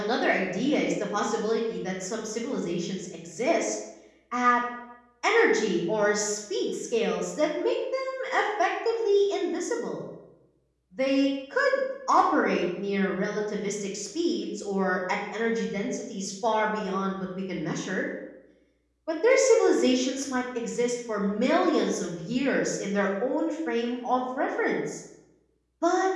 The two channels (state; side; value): identical; both; correlation 1.00